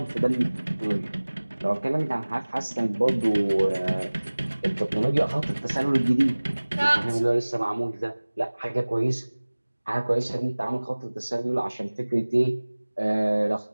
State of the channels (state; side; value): inverted; both; correlation -1.00